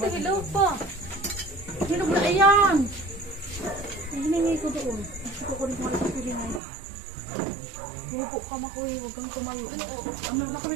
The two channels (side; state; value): left; drops out; at 6.6 s